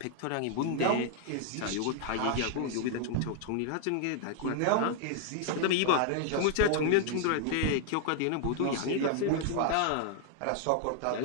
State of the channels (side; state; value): both; different; correlation 0.00